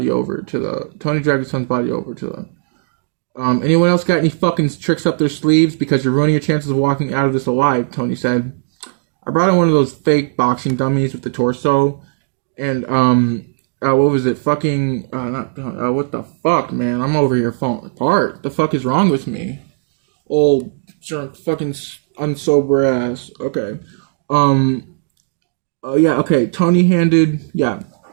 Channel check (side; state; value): left; silent; digital silence